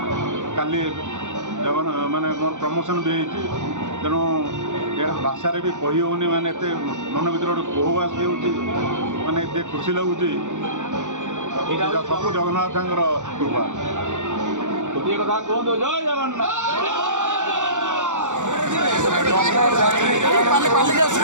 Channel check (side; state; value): left; late; 0.85 ms